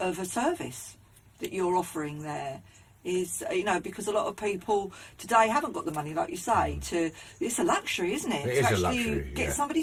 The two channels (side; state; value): both; identical; correlation 1.00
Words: service that you're offering there. Is, you know, because a lot of people today haven't got the money, like you say, it's a luxury, isn't it? It to is a actually luxury, get yeah. somebody